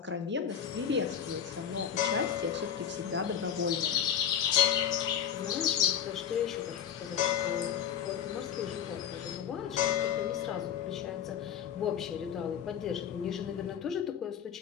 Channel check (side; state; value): right; quieter; 8.8 dB